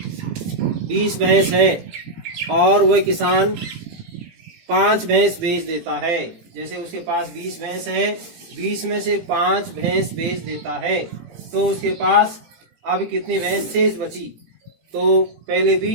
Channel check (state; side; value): late; left; 18 ms